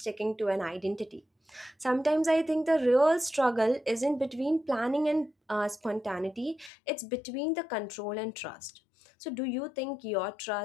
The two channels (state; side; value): drops out; right; at 6.7 s